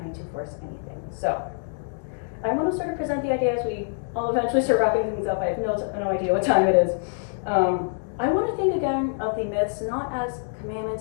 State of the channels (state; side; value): silent; right; digital silence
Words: to force anything. So, I want to sort of present the idea as we all eventually start wrapping things up. I have no idea what time it is. I want to think again of the myths not as